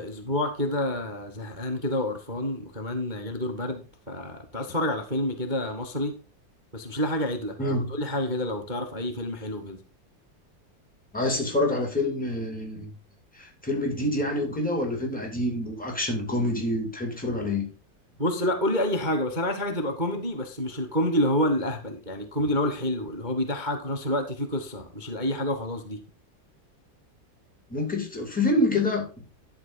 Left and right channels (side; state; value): left; late; 2.2 ms